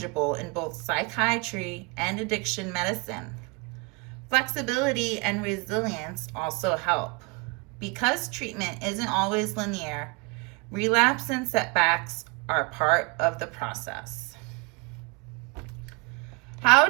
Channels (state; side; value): quieter; left; 29.1 dB